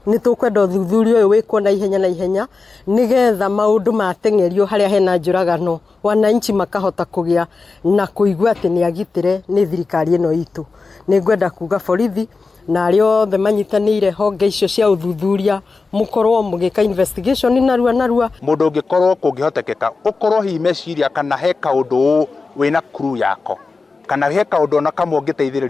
nĩ tũkwenda ũthuthuria ũyũ wĩkwo na ihenya nĩgetha maũndũ mateng'erio harĩa hena njũragano, wananchi makahota kũgĩa na kũigua atĩ nĩ agitĩre nĩ thirikari ĩno itũ. Nĩ ngwenda kuga borithi na arĩa othe manyitanĩire honge icio cia ũthuthuria mũkorwo mũgĩka investigation narua. Mũndũ ũngĩkorwo kũngĩhotekeka ũkorwo hihi meciria kana he kaũndũ wĩna crew yako kana he kaũndũ ona kamwe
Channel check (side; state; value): right; quieter; 4.1 dB